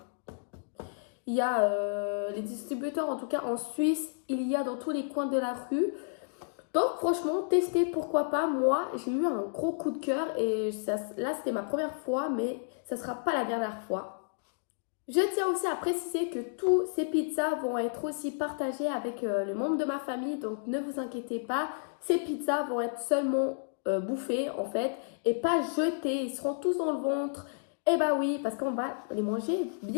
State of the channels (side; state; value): right; silent; digital silence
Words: Il y a les distributeurs, en tout cas en Suisse, il y a dans tous les coins de la rue. Donc franchement, testez, pourquoi pas. Moi, j'ai eu un gros coup de cœur et là, c'était ma première fois, mais ça ne sera pas la dernière fois. Je tiens aussi à préciser que tous ces pizzas vont être aussi partagées avec les membres de ma famille. Donc ne vous inquiétez pas, ces pizzas vont être seulement bouffées en fait et pas jetées. Ils seront tous dans le ventre. Eh bah oui, parce qu'on va les manger